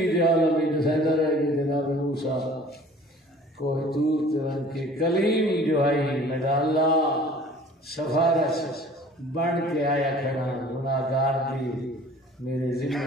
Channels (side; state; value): both; normal; correlation 0.48